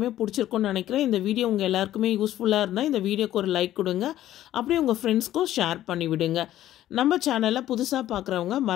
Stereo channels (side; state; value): right; quieter; 13.2 dB